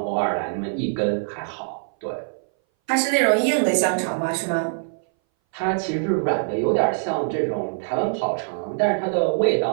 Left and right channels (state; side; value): silent; left; 60 dB below the other